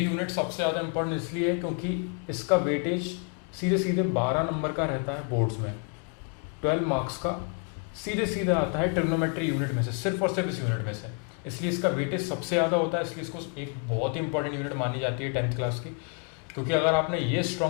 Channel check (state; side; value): quieter; right; 36.9 dB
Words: सबसे ज़्यादा इम्पोर्टेंट इसलिए है क्योंकि इसका वेटेज सीधे सीधे 12 नंबर का रहता है बोर्ड्स में। 12 मार्क्स का सीधे सीधे आता है ट्रिग्नोमेट्री यूनिट में से, सिर्फ और सिर्फ इस यूनिट में से। इसलिए इसका वेटेज सबसे ज़्यादा होता है, इसलिए इसको एक बहुत ही इंपॉर्टेंट यूनिट मानी जाती है 10th क्लास की। क्योंकि अगर आपने ये